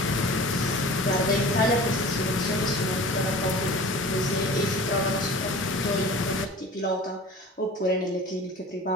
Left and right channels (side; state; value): both; normal; correlation 0.40